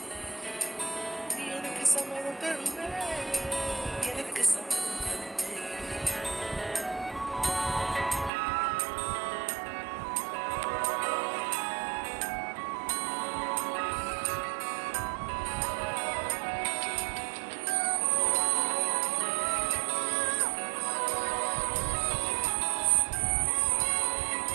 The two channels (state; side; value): drops out; left; at 8.3 s